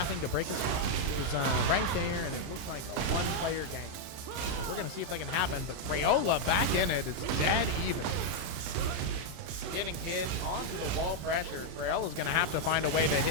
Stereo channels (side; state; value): left; late; 32 ms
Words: to break a switch. It was right there, and it looked like a one-player game. So we're going to see if that can happen, but Crayola back in it. It's dead even. Getting hit onto the wall pressure. Crayola's going to have to find a way to